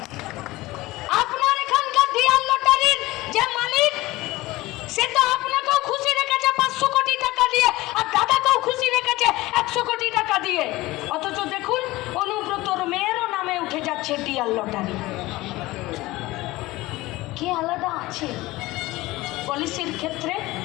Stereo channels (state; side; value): quieter; right; 19.2 dB